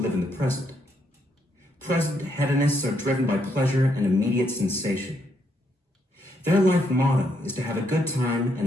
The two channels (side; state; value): both; normal; correlation 0.75